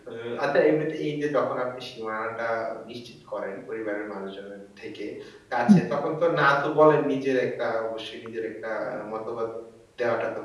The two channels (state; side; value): identical; both; correlation 1.00